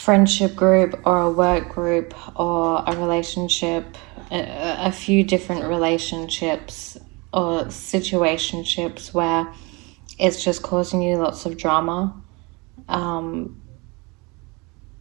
group, or a work group, or a relationship, a few different relationships or situationships where it's just causing you lots of drama,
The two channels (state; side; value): quieter; left; 27.4 dB